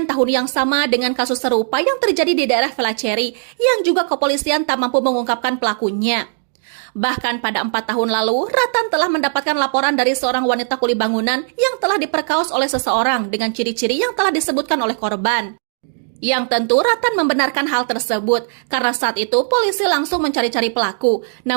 tahun yang sama dengan kasus serupa yang terjadi di daerah Velaceri yang juga kepolisian tak mampu mengungkapkan pelakunya. Bahkan pada 4 tahun lalu, Ratan telah mendapatkan laporan dari seorang wanita kuli bangunan yang telah diperkaos oleh seseorang dengan ciri-ciri yang telah disebutkan oleh korban. Yang tentu Ratan membenarkan hal tersebut karena saat itu polisi langsung mencari-cari pelaku,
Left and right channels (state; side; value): silent; left; digital silence